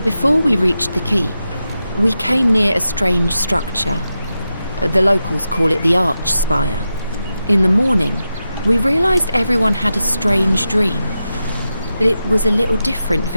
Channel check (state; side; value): inverted; both; correlation -0.90